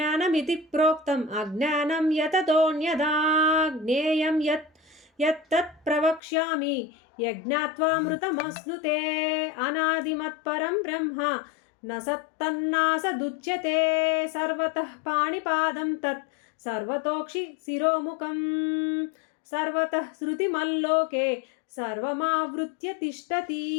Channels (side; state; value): right; drops out; at 6.2 s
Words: प्रोक्तम् अज्ञानं यततोऽन्यथा ज्ञेयं यत्तत् प्रवक्ष्यामि यज्ञात्वामृतमश्नुते अनादिमत्परं ब्रह्म न सत्तन्नासदुच्यते सर्वतः पाणिपादं तत् सर्वतोक्षि शिरोमुखं सर्वतः श्रुतिमल्लोके सर्वमावृत्य तिष्ठति।